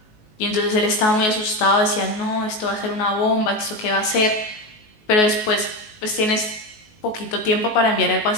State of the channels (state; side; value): late; right; 19 ms